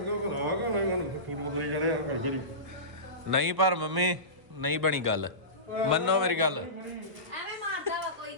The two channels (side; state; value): left; late; 1.3 ms